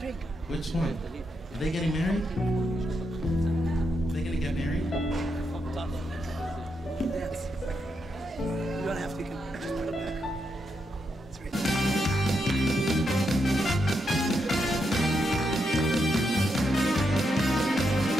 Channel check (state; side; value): normal; both; correlation 0.82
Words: Which one? Are they getting married? Are they gonna get married? Dance. You don't have to, you can just put it back. It's right there.